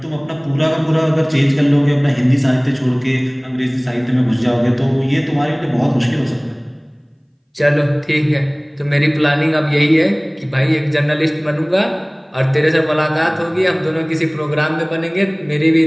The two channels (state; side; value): identical; both; correlation 1.00